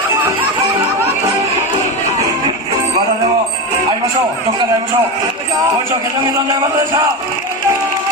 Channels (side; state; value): both; normal; correlation 0.18